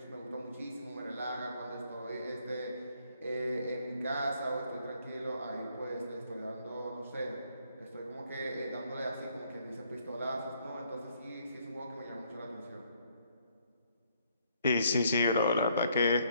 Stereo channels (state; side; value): inverted; both; correlation -0.69